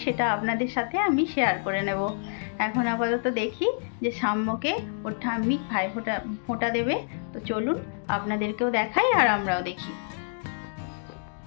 সেটা আপনাদের সাথে আমি শেয়ার করে নেব। এখন আপাতত দেখি যে সাম্যকে ওর ঠাম্মি ভাই ফোঁটা দেবে। তো চলুন আপনাদেরকেও দেখাই আর আমরাও দেখি।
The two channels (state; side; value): silent; right; digital silence